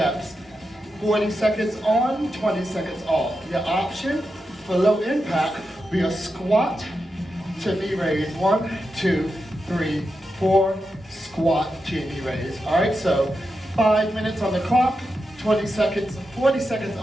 40 seconds on, 20 seconds off. Your option for low impact be a squat to knee raise. 1, 2, 3, 4, squat to knee raise. All right, so 5 minutes on the clock, 20 seconds, 40 seconds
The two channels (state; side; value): normal; both; correlation 0.88